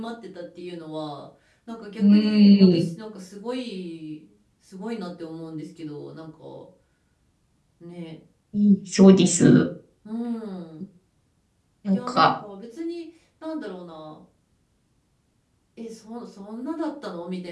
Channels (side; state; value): both; identical; correlation 1.00